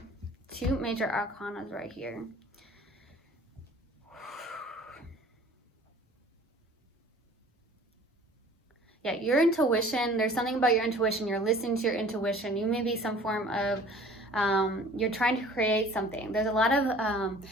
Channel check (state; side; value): normal; both; correlation 0.49